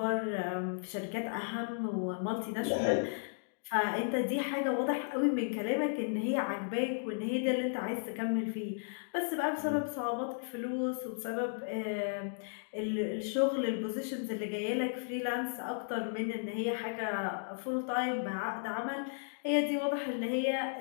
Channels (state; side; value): silent; right; digital silence